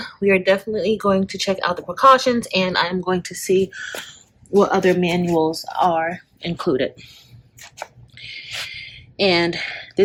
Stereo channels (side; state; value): both; identical; correlation 1.00